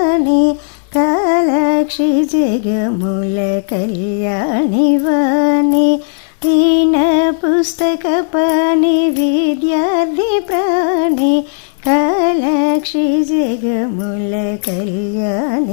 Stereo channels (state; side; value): silent; right; digital silence